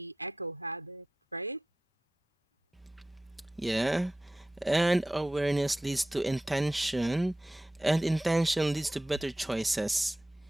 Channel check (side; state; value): both; normal; correlation 0.93